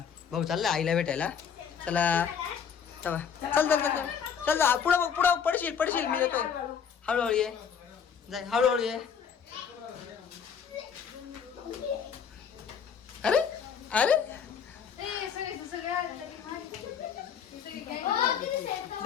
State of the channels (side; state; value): right; quieter; 7.3 dB